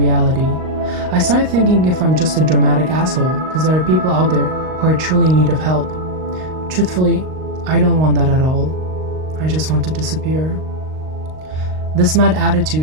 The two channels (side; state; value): left; late; 38 ms